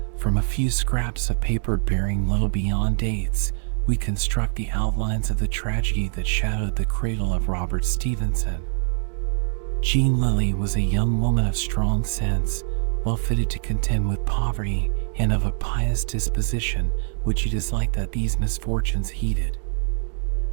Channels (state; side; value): silent; left; digital silence